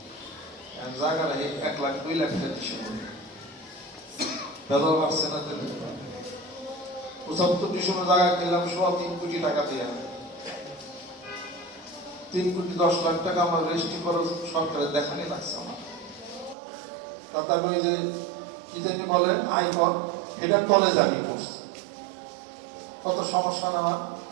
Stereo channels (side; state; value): left; drops out; at 16.6 s